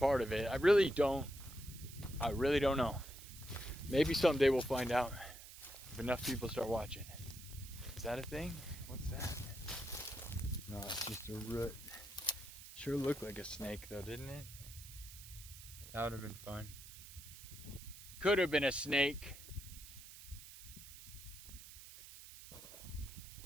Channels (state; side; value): noise; right; hiss, 15 dB below the sound